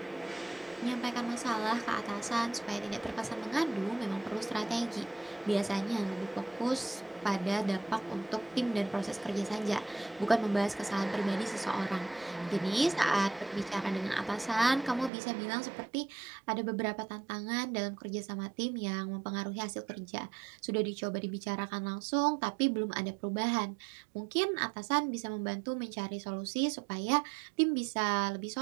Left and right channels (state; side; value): drops out; left; at 15.1 s